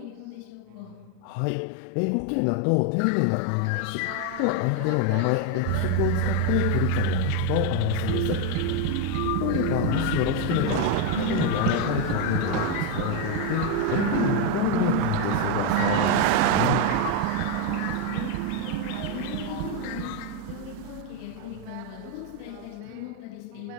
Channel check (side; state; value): both; different; correlation 0.01